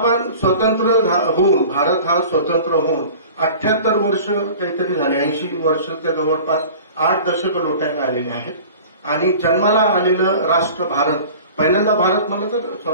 स्वतंत्र होऊन, भारत हा स्वतंत्र होऊन 78 वर्ष काहीतरी झाले, 80 वर्षाच्या जवळपास 8 दशक लोटायला आलेले आहेत. आणि जन्माला आलेलं राष्ट्र भारत, पहिल्यांदा भारत म्हणलं तर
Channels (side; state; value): both; inverted; correlation -0.41